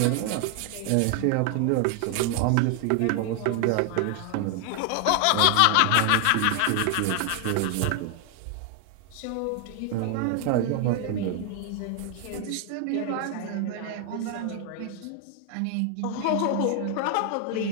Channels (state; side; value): different; both; correlation 0.00